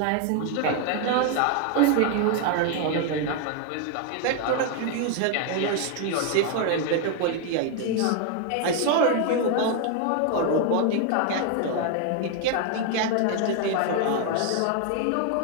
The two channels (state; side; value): different; both; correlation 0.01